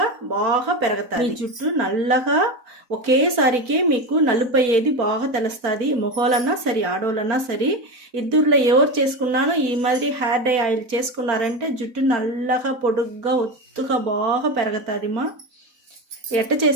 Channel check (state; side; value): late; left; 4.1 ms